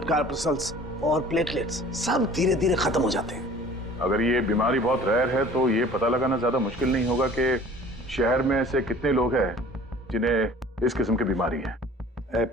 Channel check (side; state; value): both; normal; correlation 0.47